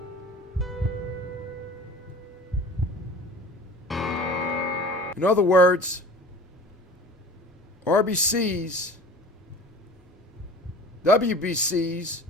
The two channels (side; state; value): both; normal; correlation 0.40